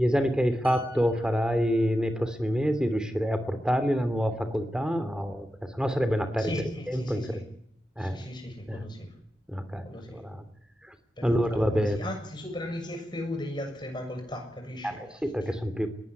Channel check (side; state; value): both; normal; correlation 0.90